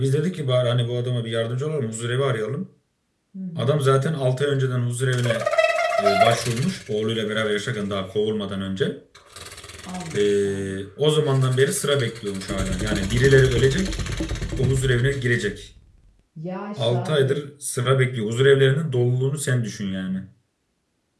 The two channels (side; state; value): both; identical; correlation 1.00